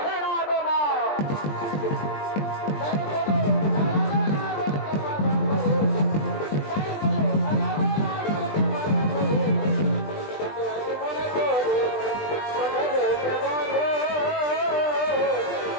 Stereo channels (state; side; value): late; right; 20 ms